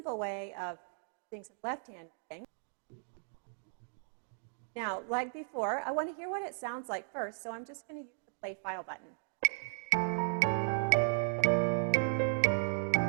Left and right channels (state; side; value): silent; left; digital silence